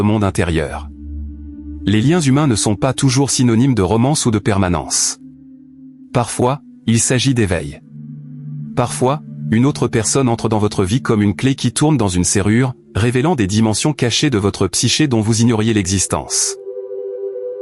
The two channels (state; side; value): identical; both; correlation 1.00